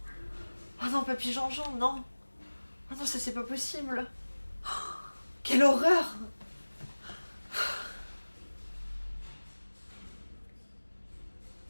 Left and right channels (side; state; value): both; inverted; correlation -1.00